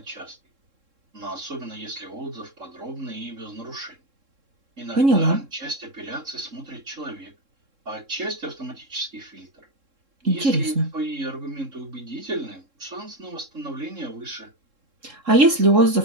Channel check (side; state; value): left; late; 3.7 ms